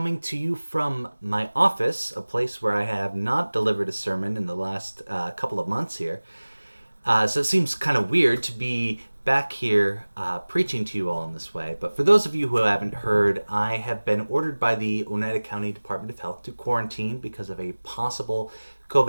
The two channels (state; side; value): inverted; both; correlation -1.00